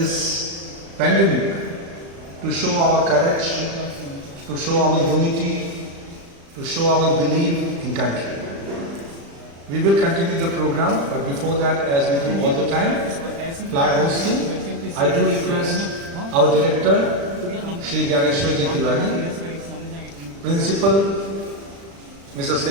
pandemic to show our courage, to show our unity, to show our belief in country. We will continue the program, but before that, as we do all the time, flag hosting, I do request our director, Shri Gyaneshwarji Tiwari, Principal, Mrs.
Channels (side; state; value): left; late; 35 ms